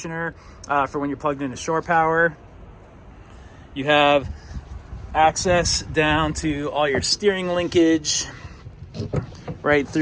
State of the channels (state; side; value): identical; both; correlation 1.00